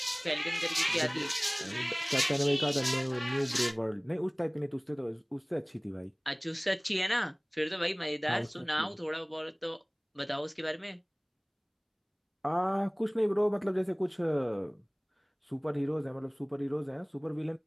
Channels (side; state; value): both; identical; correlation 1.00